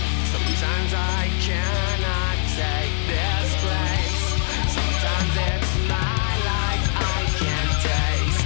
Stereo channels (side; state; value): right; silent; digital silence